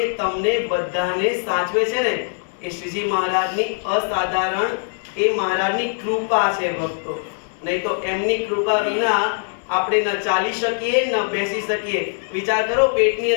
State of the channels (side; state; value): right; silent; 62 dB below the other